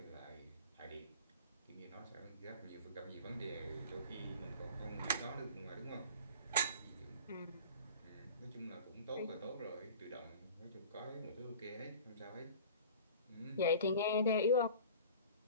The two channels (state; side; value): inverted; both; correlation -0.41